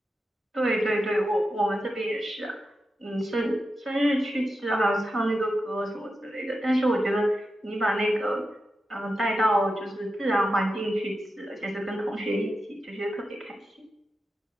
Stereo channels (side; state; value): both; normal; correlation 0.90